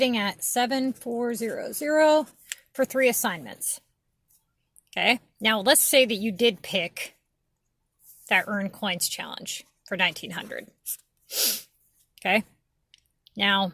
at 7,400 for 3 assignments. Okay, now let's say that you did pick that earn coins challenge for 1,900. Okay, now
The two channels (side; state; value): both; identical; correlation 1.00